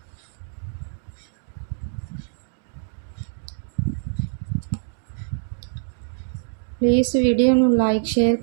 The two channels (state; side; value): silent; left; digital silence